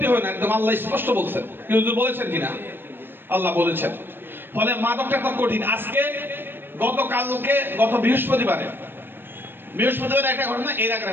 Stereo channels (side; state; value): left; late; 0.099 ms